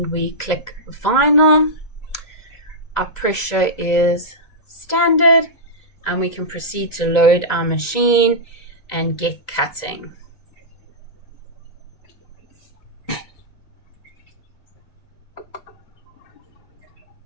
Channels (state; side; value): late; right; 2.0 ms